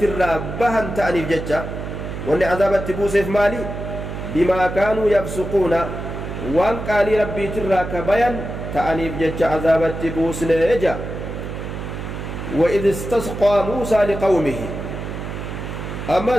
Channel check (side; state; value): right; noise; hum, 7 dB below the sound